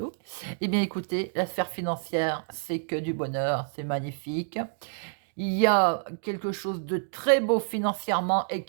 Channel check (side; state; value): left; silent; digital silence